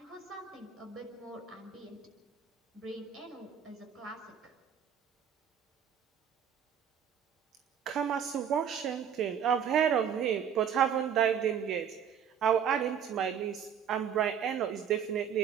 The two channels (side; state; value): left; quieter; 8.2 dB